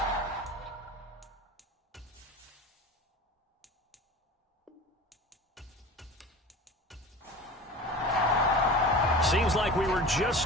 Seems like we were just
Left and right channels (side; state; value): both; normal; correlation 0.36